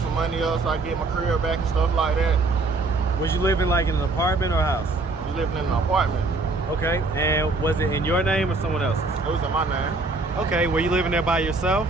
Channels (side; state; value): left; quieter; 3.5 dB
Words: money up so I could get my career back and stuff like that. Was you living like in an apartment or a house? I was living in an apartment. Okay, and was it in your name or someone else's? It was in my name. Okay, were you living there by yourself?